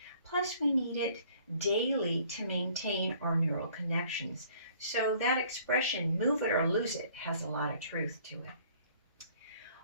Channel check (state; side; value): inverted; both; correlation -0.56